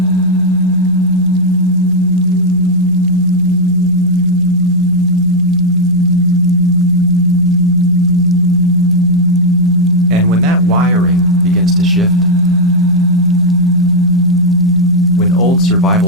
And when that wiring begins to shift, when old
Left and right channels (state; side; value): normal; both; correlation 0.00